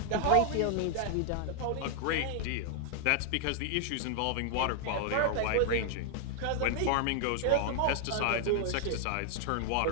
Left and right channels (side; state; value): both; different; correlation 0.00